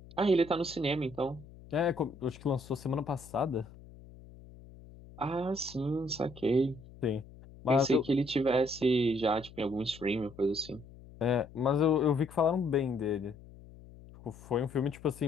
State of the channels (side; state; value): left; noise; hum, 20 dB below the sound